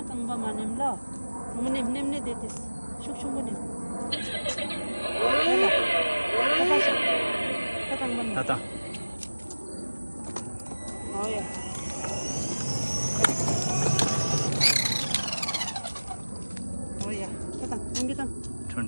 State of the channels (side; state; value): both; inverted; correlation -1.00